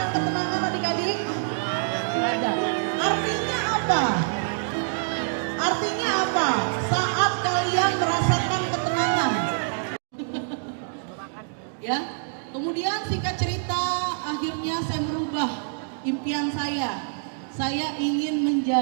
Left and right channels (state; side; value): silent; left; digital silence